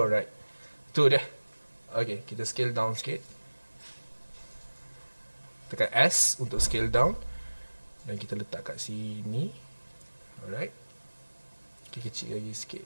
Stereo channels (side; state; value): both; inverted; correlation -1.00